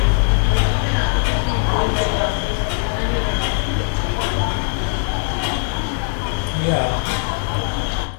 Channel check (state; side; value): silent; right; digital silence